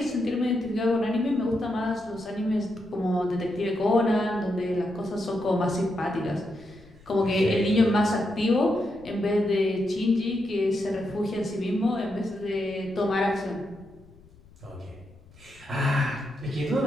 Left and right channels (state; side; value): noise; left; rumble, 25 dB below the sound